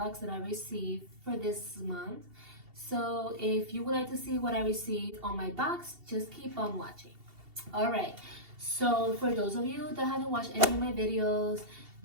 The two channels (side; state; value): left; late; 2.7 ms